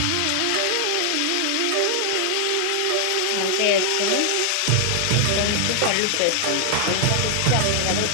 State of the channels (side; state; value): both; different; correlation 0.00